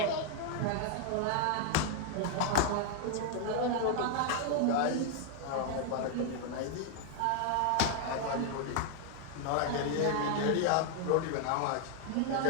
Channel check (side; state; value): both; different; correlation 0.00